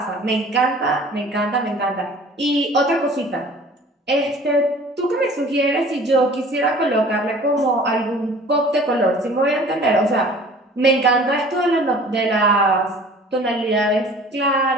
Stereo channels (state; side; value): normal; both; correlation 0.47